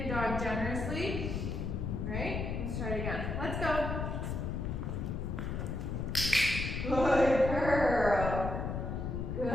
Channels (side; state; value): left; noise; rumble, 3 dB below the sound